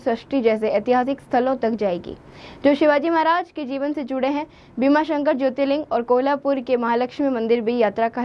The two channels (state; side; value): identical; both; correlation 1.00